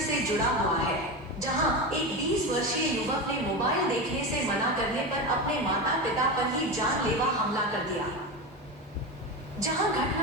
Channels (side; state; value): both; normal; correlation 0.20